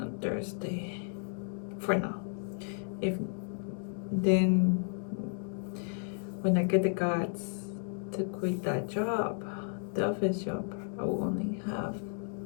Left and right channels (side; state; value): right; silent; 56 dB below the other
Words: on Thursday. For now. If then when I get the guts to quit that job, the office job, I will only have